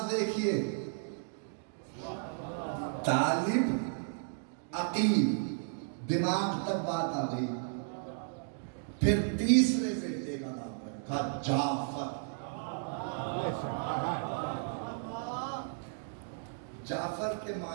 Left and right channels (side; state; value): left; silent; digital silence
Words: دیکھیے، طالب عقیل، دماغ تک بات آ گئی۔ پھر تیسرے بیٹے کا نام رکھا جعفر۔ جعفر کے